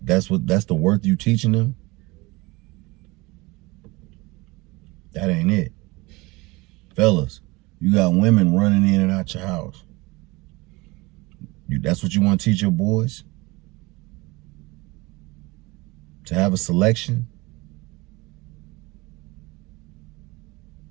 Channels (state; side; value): quieter; left; 23.2 dB